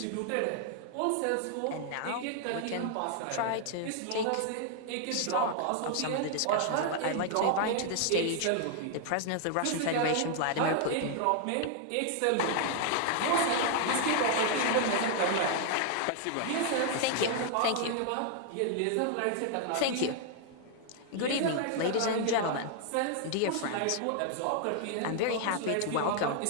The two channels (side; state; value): both; different; correlation 0.00